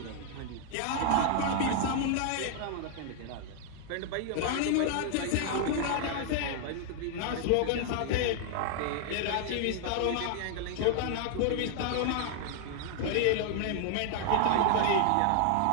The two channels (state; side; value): different; both; correlation 0.00